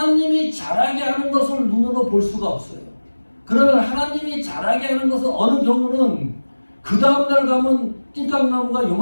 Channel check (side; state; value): both; inverted; correlation -1.00